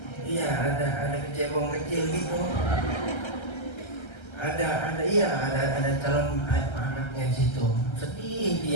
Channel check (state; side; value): late; right; 1.3 ms